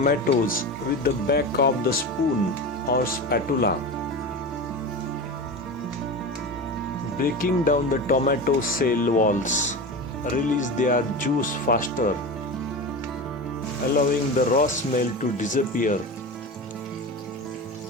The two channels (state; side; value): normal; both; correlation 0.26